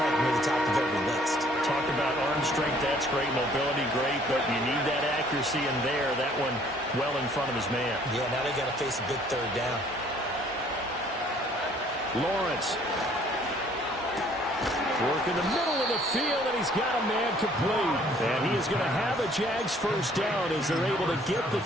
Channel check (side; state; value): both; normal; correlation 0.59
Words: near the top of every list. Talk about arm strength, that's great. Mobility, great, but you need that accuracy in there. That one well in front of his man. Yeah, now they got to face a big third down. Lawrence. Work in the middle of the field, and he's got a man complete. And he is going to have a Jags first down as they're able to get the